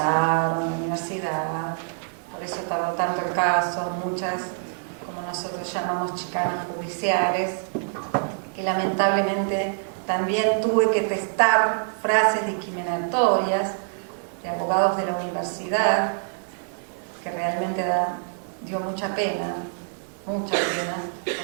en la universidad, por eso tardó tanto el caso, muchas, como nosotros llamamos, chicanas judiciales, que lamentablemente también tuve que testar frases discriminatorias de abogados de la universidad, que realmente dio mucha pena,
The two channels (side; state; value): left; silent; 61 dB below the other